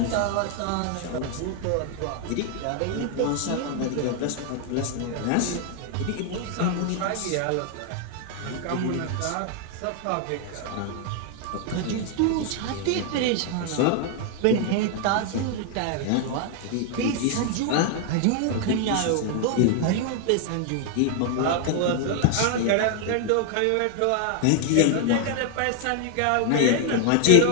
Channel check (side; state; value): both; different; correlation 0.00